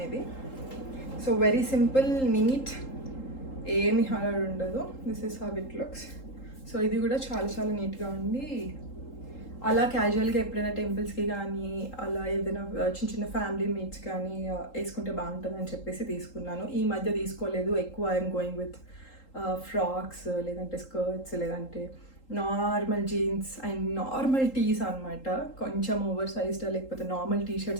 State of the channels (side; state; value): right; late; 3.8 ms